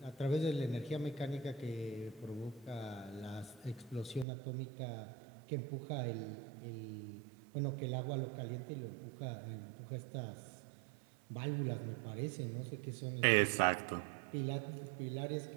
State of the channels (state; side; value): drops out; left; at 4.2 s